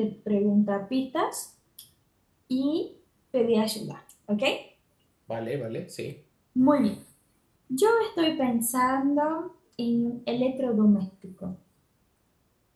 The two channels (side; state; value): both; identical; correlation 1.00